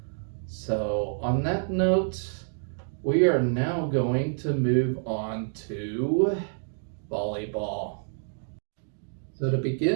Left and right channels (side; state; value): left; silent; digital silence